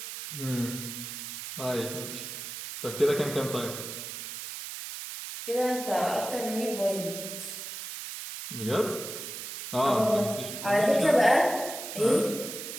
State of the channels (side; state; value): right; noise; hiss, 8 dB below the sound